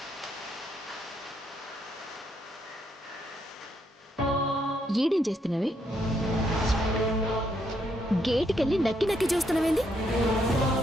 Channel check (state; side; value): normal; both; correlation 0.75